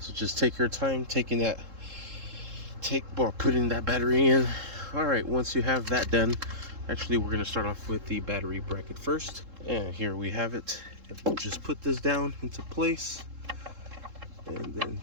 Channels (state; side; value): late; left; 3.7 ms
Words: just take your time putting that battery in. All right, once you have that done, actually we're going to start off with the battery bracket first, and here we have it. We'll just put this down into place and then